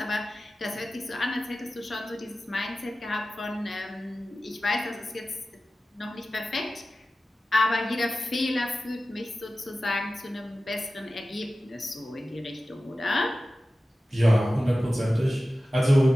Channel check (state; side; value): normal; both; correlation 0.95